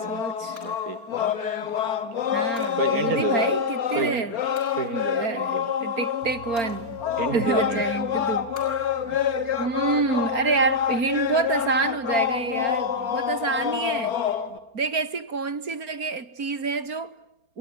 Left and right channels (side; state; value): left; late; 4.4 ms